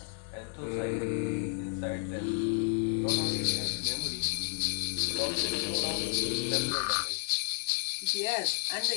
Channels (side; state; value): right; silent; 57 dB below the other